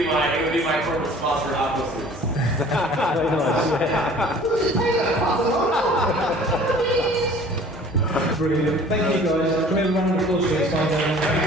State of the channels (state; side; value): normal; both; correlation 0.49